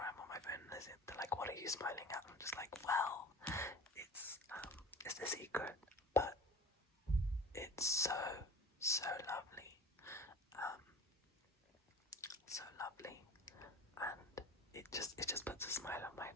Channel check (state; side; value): normal; both; correlation 0.38